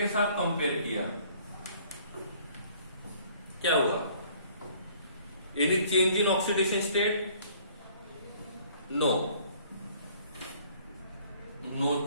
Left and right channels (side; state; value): both; inverted; correlation -0.57